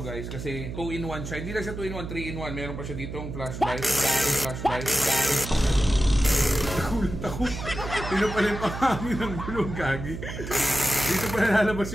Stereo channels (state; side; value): noise; right; hum, 8 dB below the sound